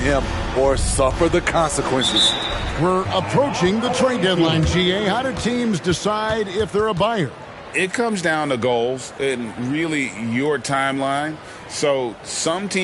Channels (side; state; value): both; identical; correlation 1.00